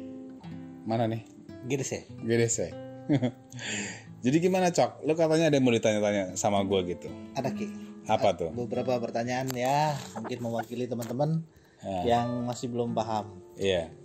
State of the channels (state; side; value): identical; both; correlation 1.00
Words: mana nih? GDC. Jadi gimana Cok? Lu katanya ada yang mau ditanya-tanya sama gue gitu. Ada Ki. Apa tuh? Beberapa pertanyaan ya, mungkin mewakili teman-teman yang masih belum paham. Iya.